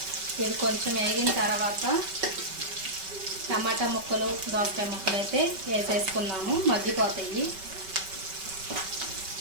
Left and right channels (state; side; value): late; left; 5.2 ms